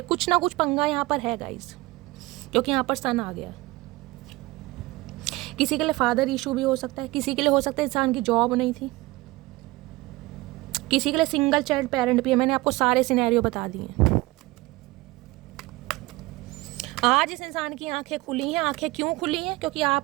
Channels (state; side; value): quieter; left; 20.8 dB